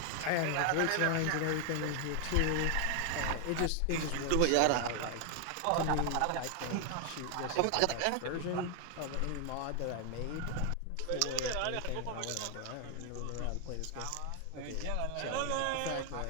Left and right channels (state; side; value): different; both; correlation 0.00